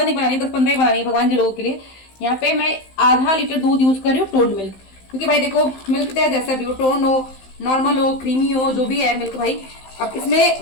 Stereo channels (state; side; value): late; right; 15 ms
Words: नहीं बनानी, 10-15 ही बनानी है भगवान जी लोगों के लिए। यहाँ पे मैं आधा लीटर दूध यूज कर रही हूँ, टोंड मिल्क। क्योंकि भाई देखो, मिल्क चाहे जैसा भी हो, टोंड हो, नॉर्मल हो, क्रीमी हो, जो भी है मिल्क भाई। अब इसमें